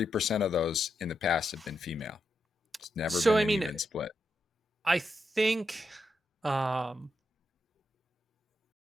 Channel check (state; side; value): normal; both; correlation 0.84